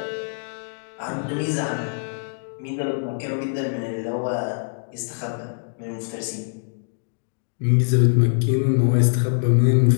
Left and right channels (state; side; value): silent; right; digital silence